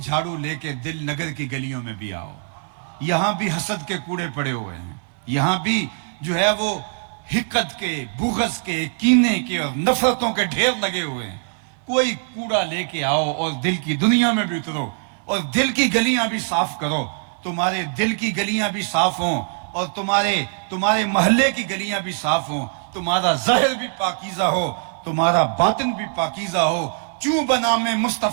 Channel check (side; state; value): left; silent; digital silence